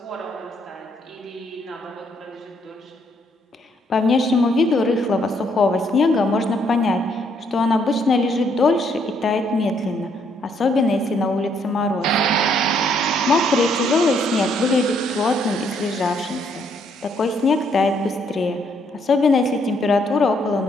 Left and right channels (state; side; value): normal; both; correlation 0.70